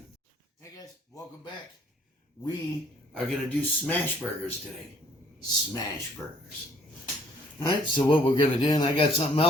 Hey guys, welcome back. We are going to do smash burgers today. Smash burgers. Alright, so what we're going to do, and I got something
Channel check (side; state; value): both; normal; correlation 0.60